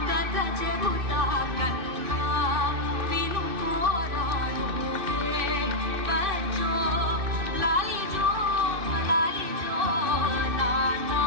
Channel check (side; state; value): left; late; 2.6 ms